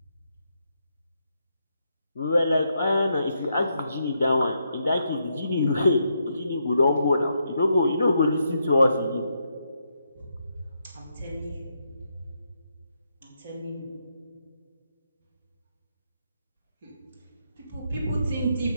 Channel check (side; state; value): both; inverted; correlation -0.80